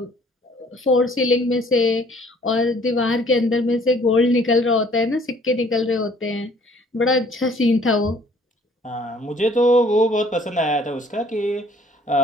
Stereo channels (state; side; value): normal; both; correlation 0.58